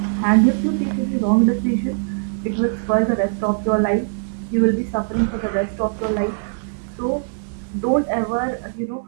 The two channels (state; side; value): silent; left; digital silence